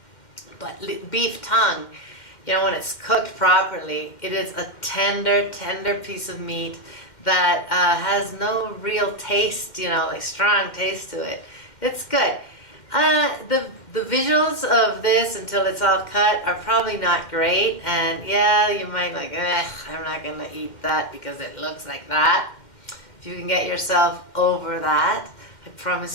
but beef tongue, you know, when it's cooked properly, it is a tender piece of meat that has no real taste, you know, like strong taste to it. It's good. The visuals of this until it's all cut are probably not great, and yeah, you might like, I'm not gonna eat that because it looks like that. If you can get yourself over that, I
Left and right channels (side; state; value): right; late; 2.1 ms